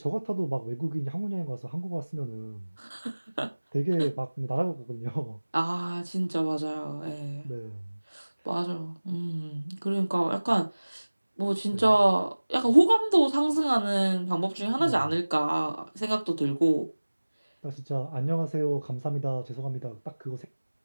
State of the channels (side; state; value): both; inverted; correlation -1.00